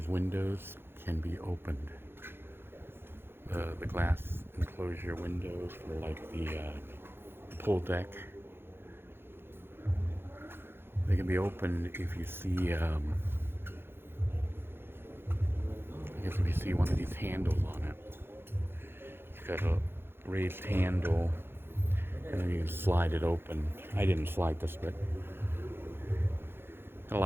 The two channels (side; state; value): left; late; 0.11 ms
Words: windows can be opened. The glass enclosure windows for like the pool deck. They can be opened if you see, I guess if you see one of these handles on it. It's got a raised handle, and then you can slide it open. I didn't slide this, but it